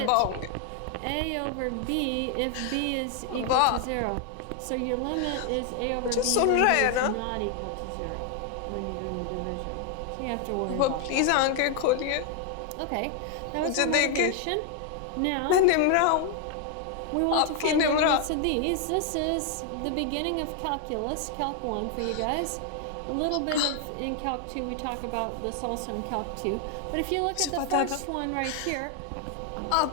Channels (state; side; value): different; both; correlation 0.00